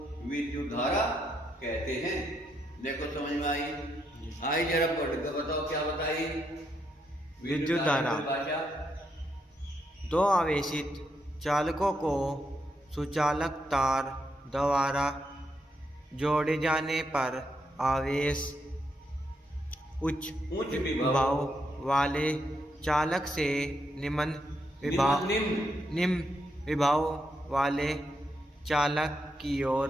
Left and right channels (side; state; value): both; normal; correlation 0.80